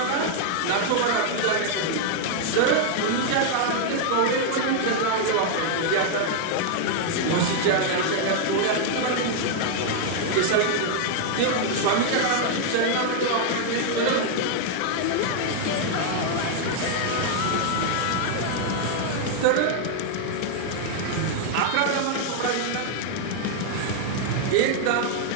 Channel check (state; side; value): different; both; correlation 0.00